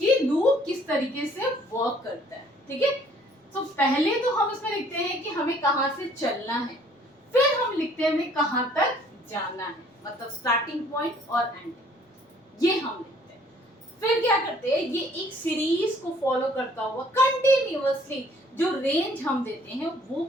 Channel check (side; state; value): both; normal; correlation 0.59